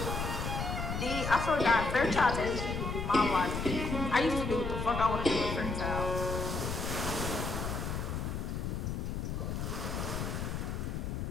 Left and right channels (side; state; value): left; noise; rumble, 3 dB below the sound